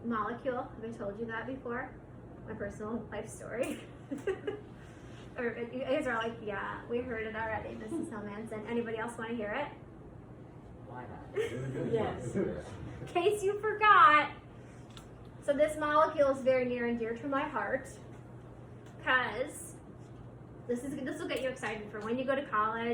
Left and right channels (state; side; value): identical; both; correlation 1.00